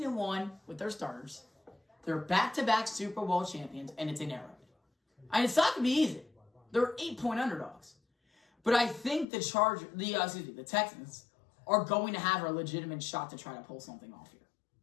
with their starters. They're back-to-back Super Bowl champions, and it's in Arrowhead. And it's not going to be easy. They're 8-point underdogs. But I think the Texans are going to have a legitimate shot to try to pull something off here.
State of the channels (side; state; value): right; drops out; at 9.2 s